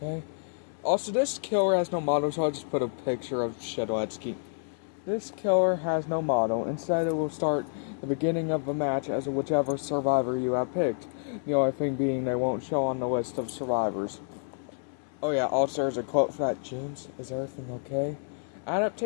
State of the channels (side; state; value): right; silent; 59 dB below the other